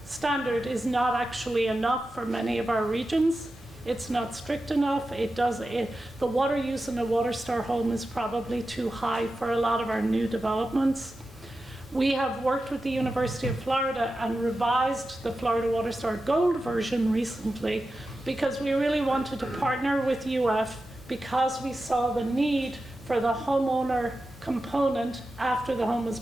standard is not actually enough for many of our regions. It's not strict enough. The water use in a Water Star home is probably too high for a lot of our new developments. We have worked with the University of Florida and revised the Florida Water Star Gold version recently because we really wanted to partner with UF because we saw the need for the homeowner component after the home was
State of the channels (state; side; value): normal; both; correlation 0.92